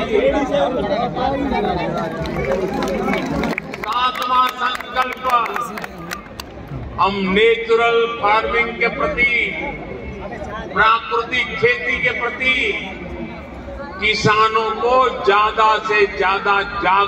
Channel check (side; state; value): both; identical; correlation 1.00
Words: सातवां संकल्प, हम नेचुरल फार्मिंग के प्रति, प्राकृतिक खेती के प्रति किसानों को ज्यादा से ज्यादा